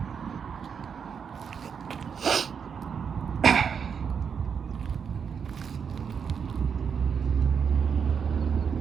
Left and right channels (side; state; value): left; quieter; 6.7 dB